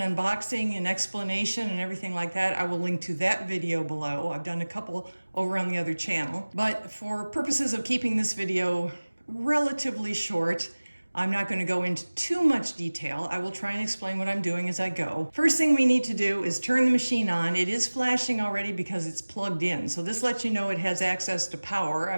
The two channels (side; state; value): both; inverted; correlation -1.00